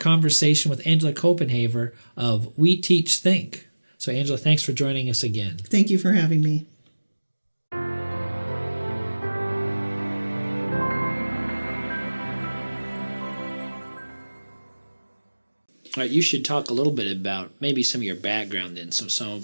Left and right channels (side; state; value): both; inverted; correlation -1.00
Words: with Angela Copenhaver of We Teach Think. So Angela, thanks for joining us again. Thank you for having me. All right, you should talk a little bit about maybe some of your background then, so some